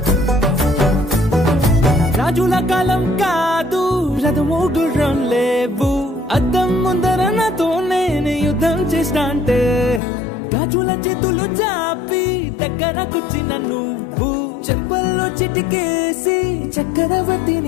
రాజుల కాలం కాదు రథము గుర్రం లేవు అద్దం ముందర నాతో నేను యుద్ధం చేస్తా అంటే గాజుల చేతులు చాపి దగ్గరకొచ్చిన నువ్వు చెంపల్లో చిటికేసి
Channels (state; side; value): drops out; right; at 10.0 s